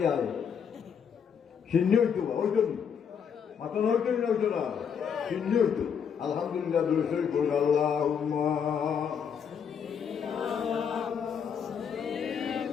আয় সিন্নি হইতো হইতো নি মাথা হইতো না হইতো না সিন্নি হইতো আলহামদুলিল্লাহ দুরূদ পড়ি আল্লাহুম্মা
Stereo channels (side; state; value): right; quieter; 7.3 dB